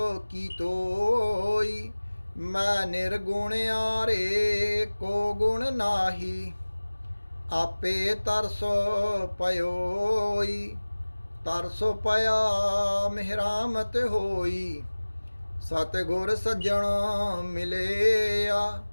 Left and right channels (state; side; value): inverted; both; correlation -1.00